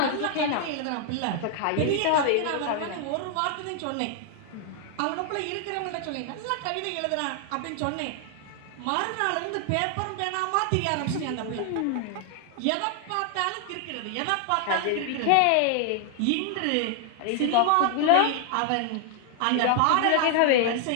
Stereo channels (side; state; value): both; different; correlation 0.00